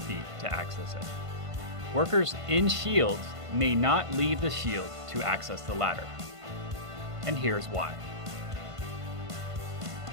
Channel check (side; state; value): left; late; 1.5 ms